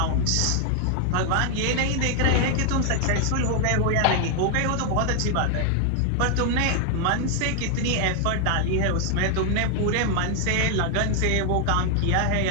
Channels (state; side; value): different; both; correlation 0.00